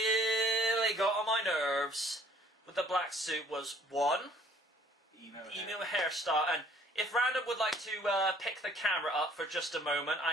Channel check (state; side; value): normal; both; correlation 0.58